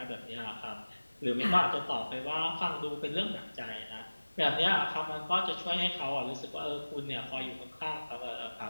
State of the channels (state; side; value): inverted; both; correlation -1.00